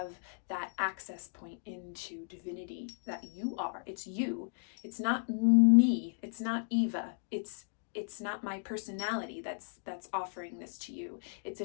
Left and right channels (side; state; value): right; silent; digital silence